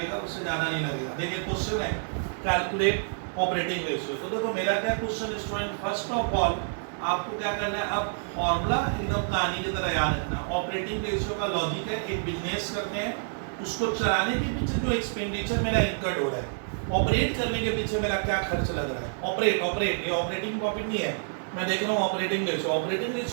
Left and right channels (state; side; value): silent; left; digital silence